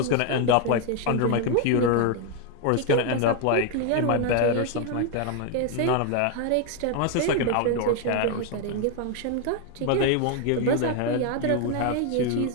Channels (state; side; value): different; both; correlation 0.01